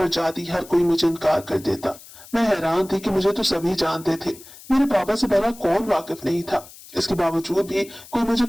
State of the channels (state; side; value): noise; left; hiss, 19 dB below the sound